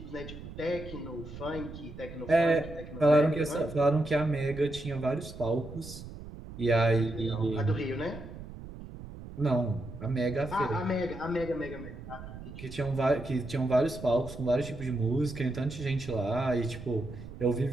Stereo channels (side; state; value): right; noise; rumble, 13 dB below the sound